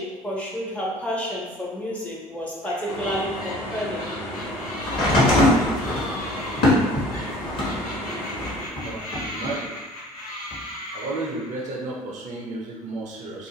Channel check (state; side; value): normal; both; correlation 0.48